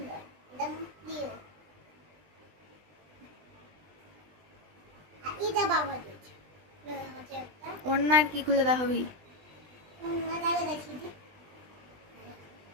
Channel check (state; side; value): late; left; 20 ms